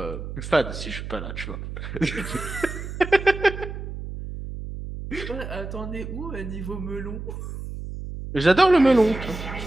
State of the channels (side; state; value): right; noise; hum, 8 dB below the sound